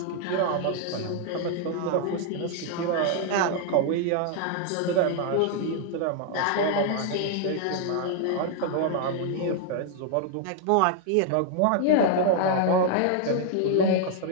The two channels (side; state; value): both; different; correlation 0.00